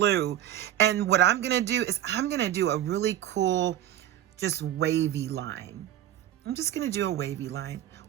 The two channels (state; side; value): quieter; left; 12.0 dB